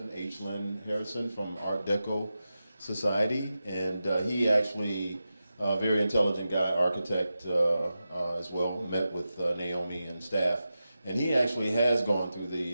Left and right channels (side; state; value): both; inverted; correlation -0.92